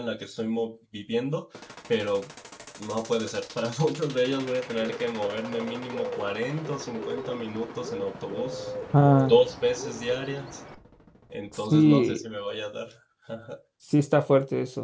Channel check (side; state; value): both; identical; correlation 1.00